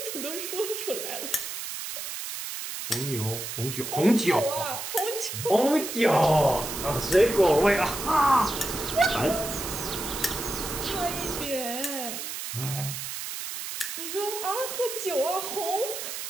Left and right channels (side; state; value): right; noise; hiss, 6 dB below the sound